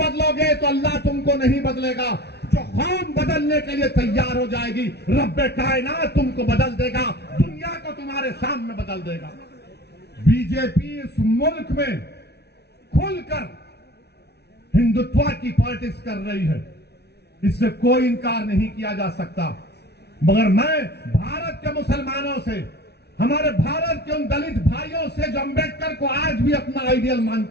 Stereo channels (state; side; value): late; right; 0.49 ms